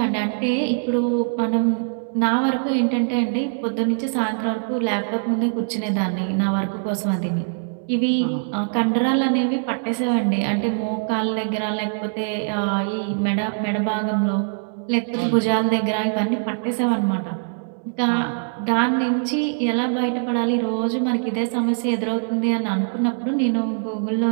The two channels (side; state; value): left; silent; 64 dB below the other